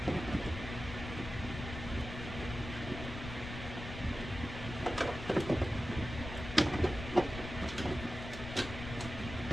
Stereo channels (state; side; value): noise; left; rumble, 8 dB below the sound